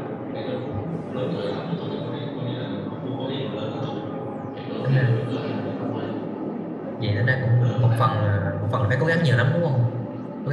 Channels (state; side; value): identical; both; correlation 1.00